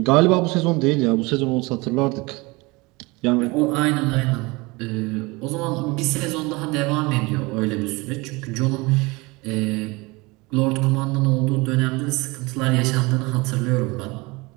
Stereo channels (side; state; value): left; quieter; 24.6 dB